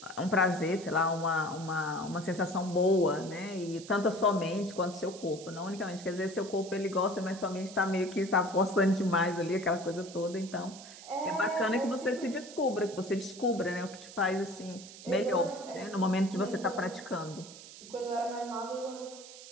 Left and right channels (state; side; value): noise; right; hiss, 16 dB below the sound